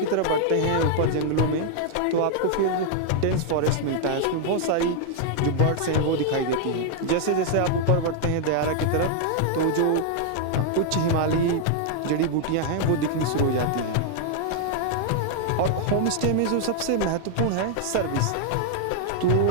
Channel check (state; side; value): different; both; correlation 0.00